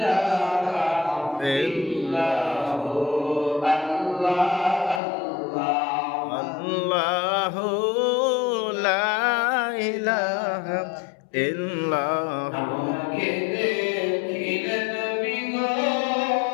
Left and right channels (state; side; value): drops out; right; at 5.0 s